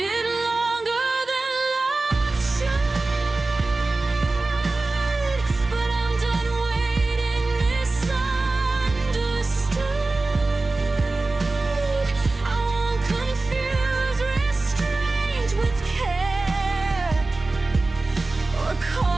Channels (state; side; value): quieter; left; 3.3 dB